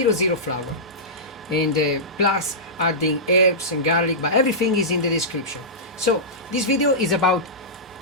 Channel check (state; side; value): normal; both; correlation -0.15